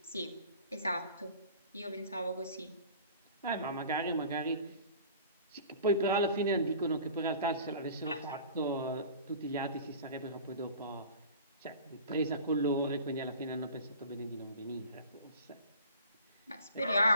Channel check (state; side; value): inverted; both; correlation -0.43